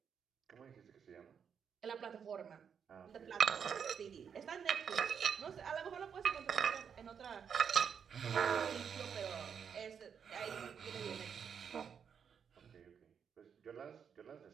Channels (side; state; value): left; quieter; 7.2 dB